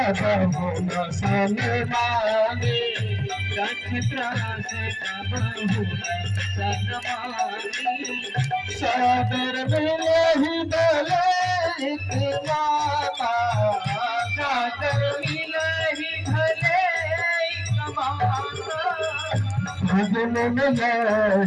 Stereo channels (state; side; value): identical; both; correlation 1.00